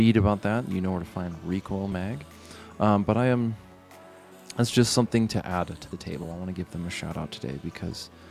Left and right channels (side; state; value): both; identical; correlation 1.00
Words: about that, you know where to find Recoil mag. But that's just something to add to the table. I want to give them a shout out today because